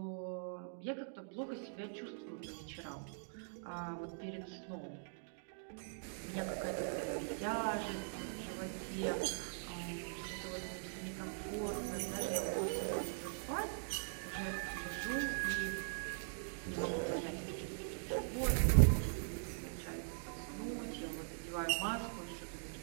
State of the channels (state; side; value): silent; left; digital silence